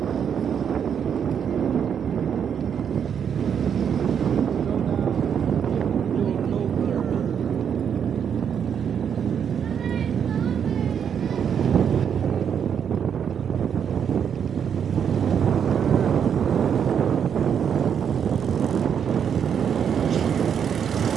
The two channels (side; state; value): left; quieter; 7.9 dB